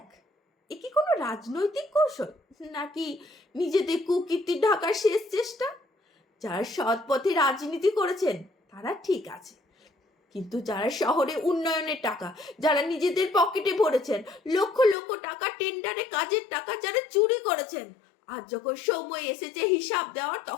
এ কি কোনো রাজনৈতিক কৌশল, নাকি নিজেদের কুকীর্তি ঢাকার শেষ চেষ্টা? যারা সৎ পথে রাজনীতি করেছেন তারা ঠিক আছে, কিন্তু যারা শহরে উন্নয়নের টাকা যারা নিজেদের পকেটে ভরেছেন, লক্ষ লক্ষ টাকা টেন্ডারে কাজের টাকা যারা চুরি করেছেন, আজ যখন সময় এসেছে হিসাব দেওয়ার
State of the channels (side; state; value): right; drops out; at 15.0 s